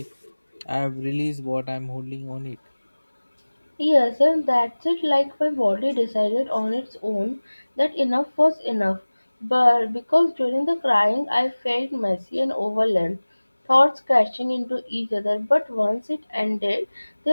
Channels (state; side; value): inverted; both; correlation -1.00